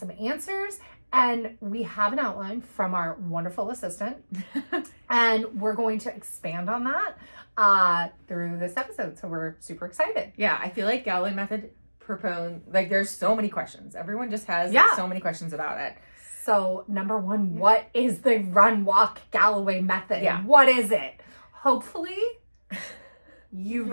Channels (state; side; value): inverted; both; correlation -1.00